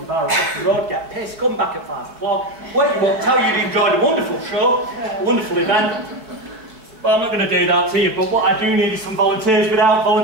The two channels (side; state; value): left; late; 4.6 ms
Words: bar across the road, get pissed, come back at 5 o'clock, wake you up, tell you you enjoyed a wonderful show, a wonderful event. But I'm not going to do that to you, but what I do need is some volunteers. Without